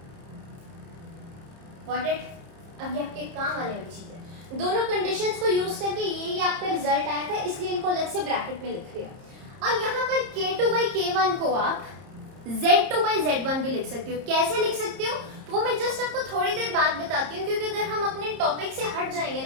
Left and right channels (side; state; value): left; late; 30 ms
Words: गॉट इट। अब ये आपके काम आने वाली चीज है। दोनों कंडीशंस को यूज करके ये आपका रिजल्ट आया था, इसलिए इनको अलग से ब्रैकेट में लिख लिया। अब यहाँ पर k2 by k1 को आप z2 by z1 भी लिख सकते हो। कैसे लिख सकते हो वो मैं जस्ट आपको थोड़ी देर बाद बताती हूँ, क्योंकि अगर हम अपने टॉपिक से हट जाएंगे